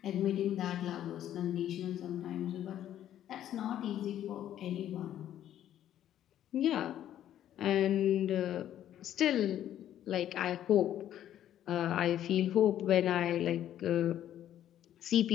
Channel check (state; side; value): quieter; right; 11.4 dB